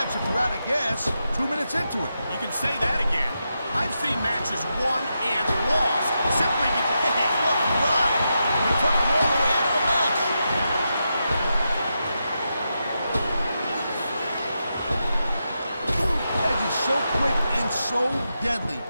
if you're out of gas 2 minutes into it. You can say that again. I've seen matches won and lost simply because... Hey, look, right. They took them all the way out of the match. Edge is so quick and so deadly.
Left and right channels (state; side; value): inverted; both; correlation -0.87